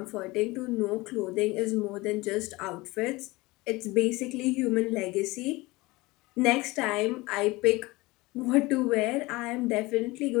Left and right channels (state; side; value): quieter; right; 21.7 dB